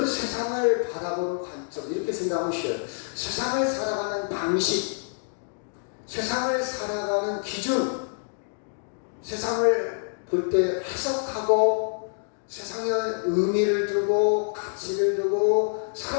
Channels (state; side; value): silent; right; 60 dB below the other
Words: 세상을 바라보는 관점, 이렇게 생각하면 쉬워요. 세상을 살아가는 방식, 세상을 살아가는 기준, 세상을 볼 때 해석하고 세상에 의미를 두고 가치를 두고